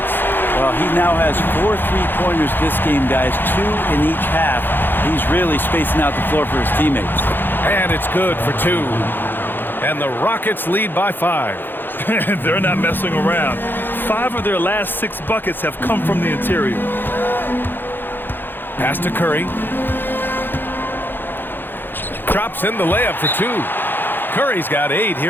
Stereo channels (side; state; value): right; late; 0.097 ms